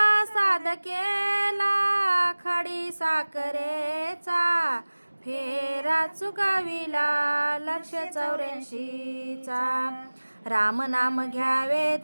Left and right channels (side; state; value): both; inverted; correlation -1.00